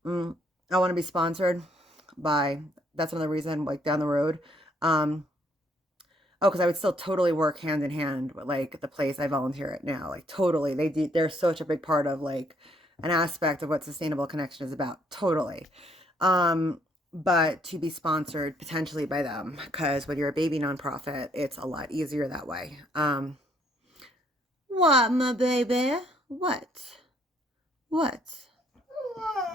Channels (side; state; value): both; normal; correlation 0.67